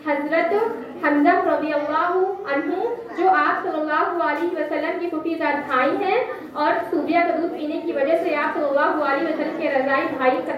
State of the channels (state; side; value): identical; both; correlation 1.00